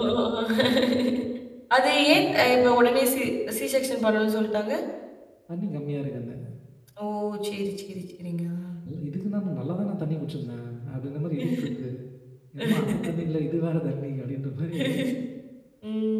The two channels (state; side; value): identical; both; correlation 1.00